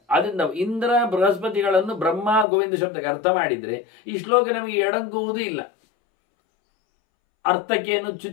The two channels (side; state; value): right; drops out; at 2.5 s